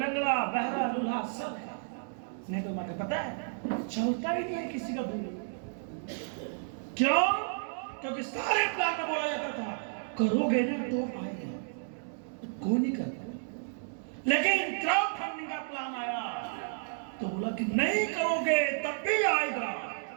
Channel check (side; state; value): left; silent; digital silence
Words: बहरा लूल्हा सब है, नहीं तो मैं पता है चलता ही नहीं है किसी का दूर। क्यों? क्योंकि सारे प्लान में बोला जाता था करोगे ना तो आएगा, कोई नहीं करता। लेकिन क्राउड फंडिंग का प्लान आया तो बोला कि नहीं करोगे तब भी आएगा।